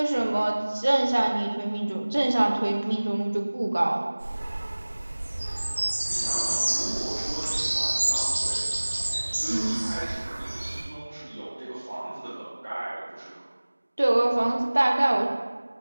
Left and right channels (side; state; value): both; inverted; correlation -1.00